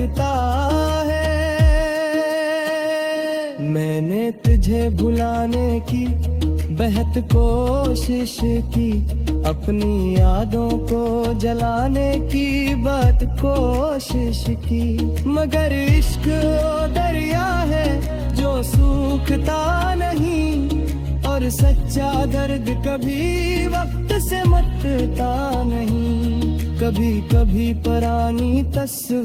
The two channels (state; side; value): identical; both; correlation 1.00